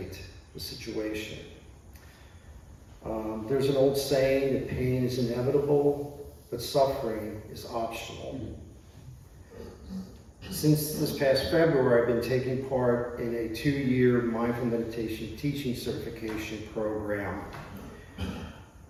the situation. There's an old saying that pain is inevitable, but suffering is optional. Since this past February, I've been taking part in a 2-year mindful meditation teaching certification program.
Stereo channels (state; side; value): identical; both; correlation 1.00